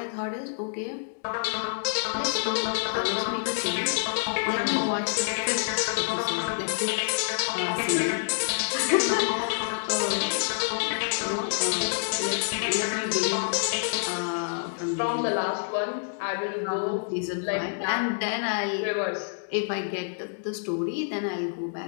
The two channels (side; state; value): right; silent; digital silence